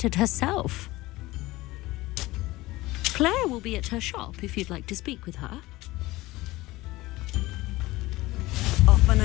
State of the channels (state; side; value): quieter; right; 19.2 dB